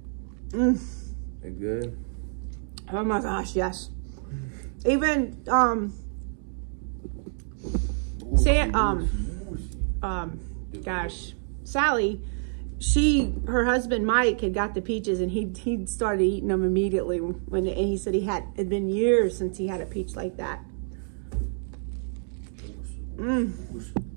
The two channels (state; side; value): silent; left; digital silence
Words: They good? Oh my gosh, yes. Even Sally, her husband Mike had got the peaches, and he started eating them immediately and he said it'd been years since he had a peach like that.